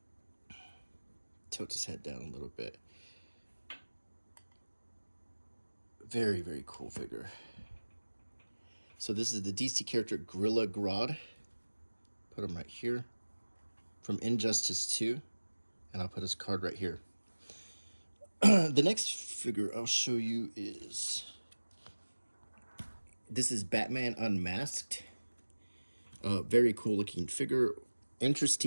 Tilt his head down a little bit. Very, very cool figure. So this is the DC character Gorilla Grodd. Put him right here. From Injustice 2. And I'll put his card right here. The next figure I'll show you is... This is Batman Unmasked. Very cool looking figure.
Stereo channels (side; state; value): both; inverted; correlation -1.00